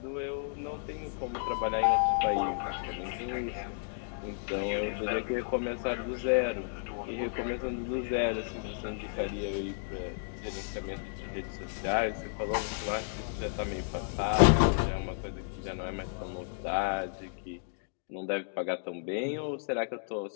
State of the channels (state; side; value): silent; right; digital silence